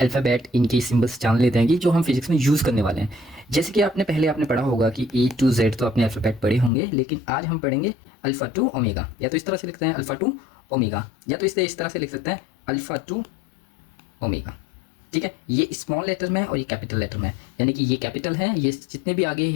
इनके सिंबल्स जान लेते हैं कि जो हम फिजिक्स में यूज़ करने वाले हैं। जैसे कि आपने पढ़ा होगा कि ए टू जेड तो अपने अल्फ़ाबेट पढ़े होंगे, लेकिन आज हम पढ़ेंगे अल्फ़ा टू ओमेगा। या तो इस तरह से लिखते हैं अल्फ़ा टू ओमेगा, या तो इस तरह से लिख सकते हैं अल्फ़ा टू ओमेगा। ठीक है, ये स्मॉल लेटर में है और ये कैपिटल लेटर में है, यानी कि ये कैपिटल है, ये जितने भी आगे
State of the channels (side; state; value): right; drops out; at 6.7 s